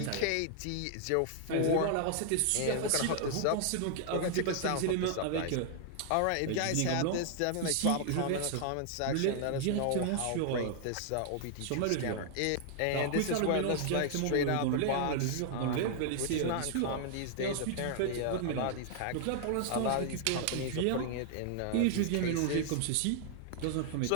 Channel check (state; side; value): different; both; correlation 0.00